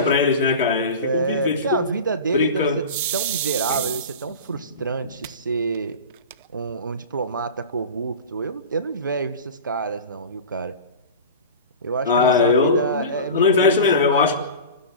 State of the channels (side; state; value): both; inverted; correlation -0.32